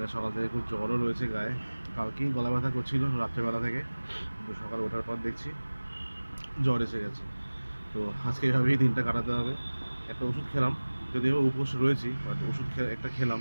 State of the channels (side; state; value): both; inverted; correlation -1.00